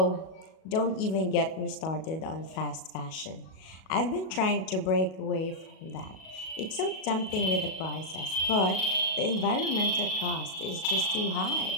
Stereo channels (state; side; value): late; right; 37 ms